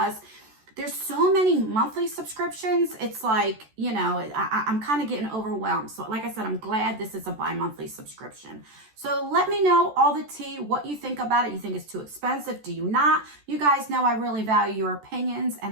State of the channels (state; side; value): late; left; 14 ms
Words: there's so many monthly subscriptions. It's like, you know, I'm kind of getting overwhelmed. So like I said, I'm glad this is a bi-monthly subscription. So let me know all the tea, what you think about it. You think it's too expensive? Do you not? You guys know I really value your opinions